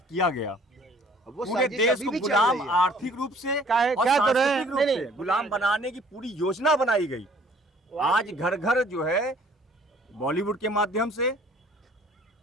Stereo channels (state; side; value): normal; both; correlation 0.55